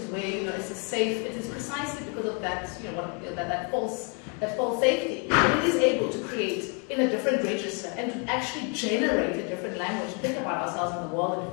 where it's a safe. It is precisely because of that that false safety that it is able to create in a different register and to actually generate a different language, think about ourselves in the world and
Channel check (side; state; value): right; quieter; 36.6 dB